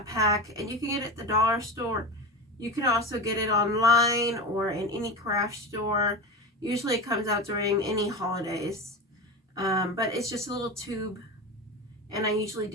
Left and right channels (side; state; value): both; normal; correlation 0.24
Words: pack, and you can get it at the dollar store. You can also get it online or in any craft store. Usually it comes out during any holidays. But it's just a little tube, and I usually